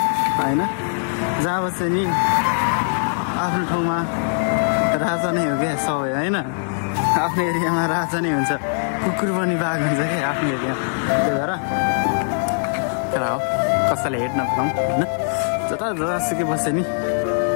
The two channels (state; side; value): silent; right; digital silence